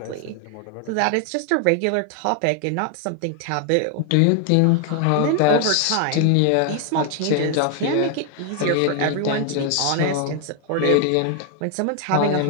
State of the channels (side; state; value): both; different; correlation 0.00